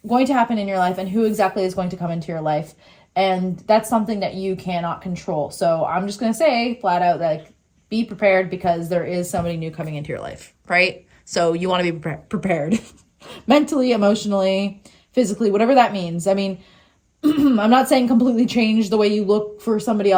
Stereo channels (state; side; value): identical; both; correlation 1.00